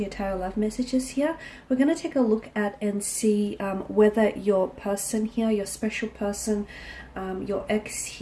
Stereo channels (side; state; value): both; identical; correlation 1.00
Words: your tarot love messages here. We're going to take a look at and see whether your person here, your special person, your ex